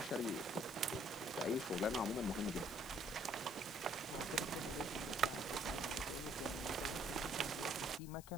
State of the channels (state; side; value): noise; left; hiss, 16 dB below the sound